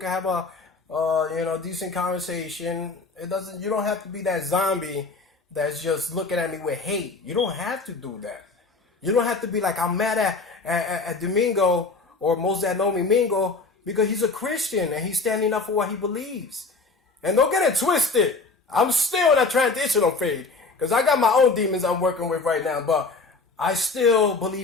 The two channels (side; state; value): right; quieter; 3.9 dB